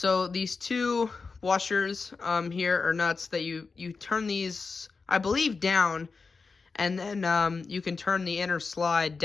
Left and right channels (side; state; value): right; quieter; 4.5 dB